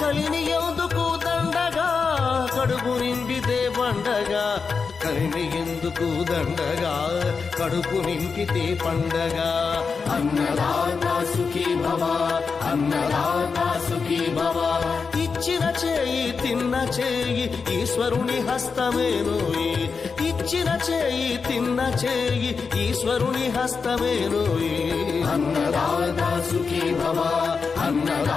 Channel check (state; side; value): quieter; right; 5.2 dB